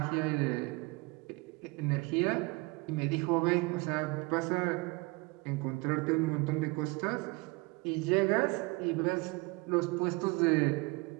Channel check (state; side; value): quieter; left; 25.7 dB